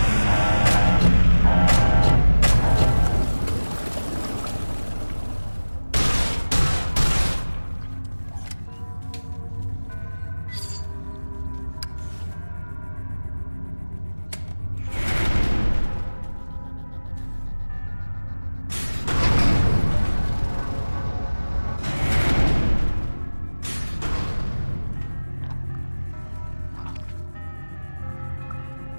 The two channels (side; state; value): both; inverted; correlation -1.00